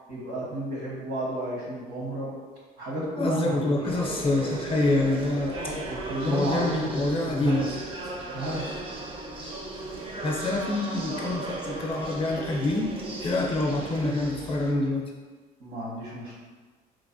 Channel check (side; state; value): both; normal; correlation 0.66